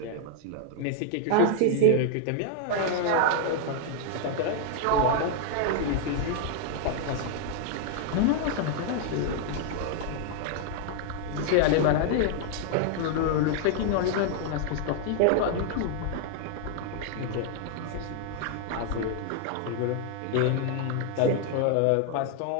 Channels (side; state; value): both; different; correlation 0.00